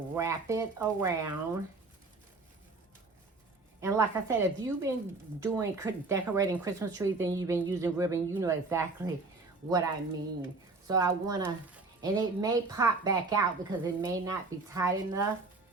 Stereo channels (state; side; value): quieter; left; 3.6 dB